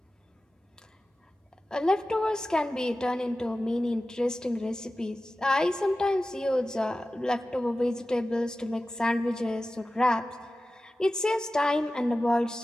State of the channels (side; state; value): both; normal; correlation 0.95